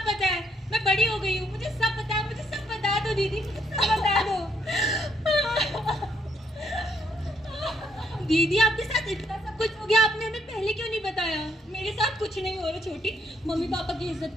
पता है, मैं बड़ी हो गई हूँ, मुझे सब पता है, मुझे सब बता दो दीदी, मुझे सब बता दो। दीदी आपके साथ इतना सब कुछ हो गया, आपने हमें पहले क्यों नहीं बताया? मेरे साथ कुछ नहीं हो रहा छोटी, मम्मी पापा की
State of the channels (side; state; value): both; normal; correlation 0.73